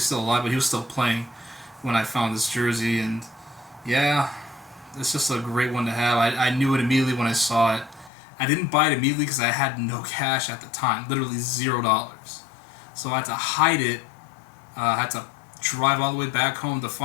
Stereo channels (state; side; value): drops out; right; at 8.1 s